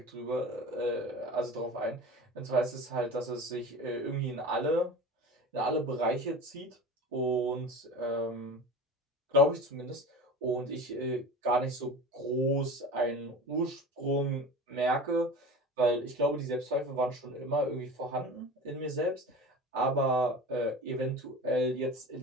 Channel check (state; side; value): normal; both; correlation 0.34